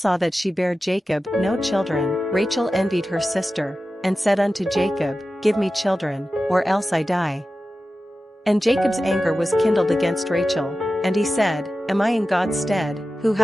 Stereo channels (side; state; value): both; normal; correlation 0.94